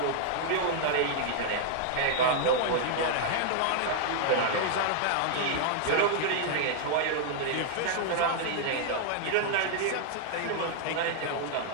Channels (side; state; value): both; different; correlation 0.00